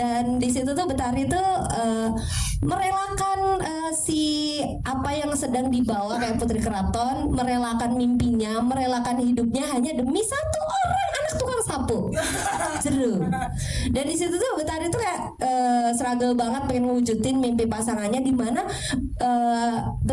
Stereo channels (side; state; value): both; identical; correlation 1.00